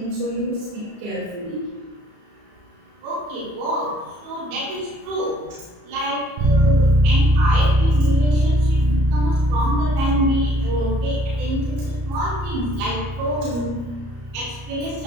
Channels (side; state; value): left; late; 34 ms